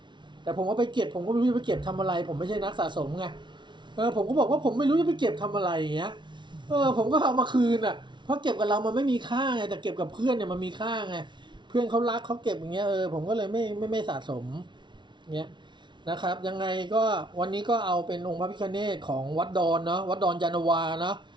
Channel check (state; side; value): late; left; 0.23 ms